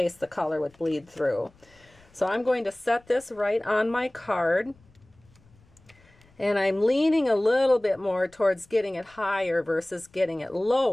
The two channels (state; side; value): noise; left; rumble, 30 dB below the sound